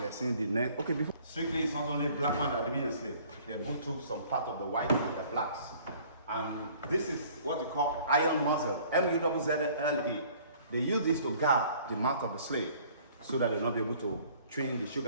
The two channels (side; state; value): both; inverted; correlation -0.54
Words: are seeing the next. Okay, before strictly, it's not only black man that are being enslaved. They both took some part of the white and the blacks. And this is what we call iron muzzle, M-U-Z-Z-L-E. They use this to guard the mouth of the slave so that they'll not be able to train the